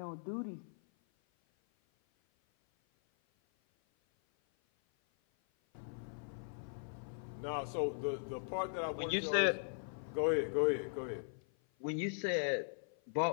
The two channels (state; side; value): silent; right; 52 dB below the other